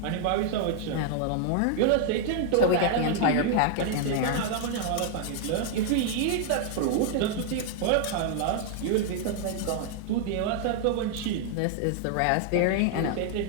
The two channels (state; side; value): different; both; correlation 0.00